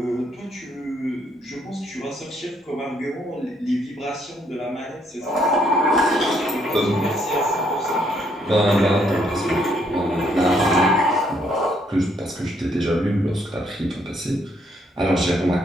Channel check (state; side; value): normal; both; correlation 0.70